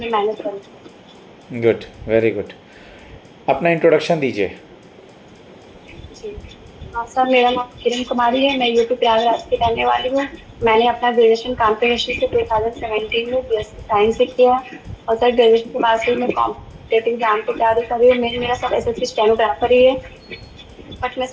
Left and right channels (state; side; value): identical; both; correlation 1.00